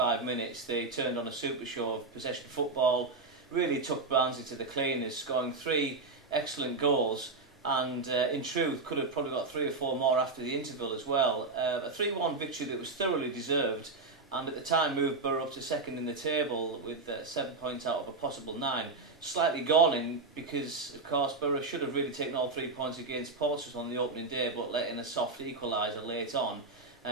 minutes, they turned on a super show of possession football, really took Barnsley to the cleaners, scoring 3 excellent goals, and in truth could have probably got 3 or 4 more after the interval as well. A 3-1 victory that was thoroughly deserved, and at the time moved Borough up to second in the table with 7 points out of a possible 9. Slightly galling because, of course, Borough should have really taken all 3 points against Portsmouth on the opening day, but let in a soft equaliser late on.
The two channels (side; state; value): left; quieter; 3.7 dB